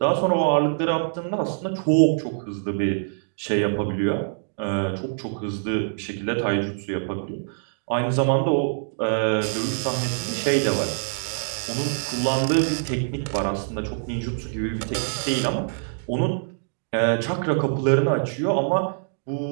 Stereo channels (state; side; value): silent; left; digital silence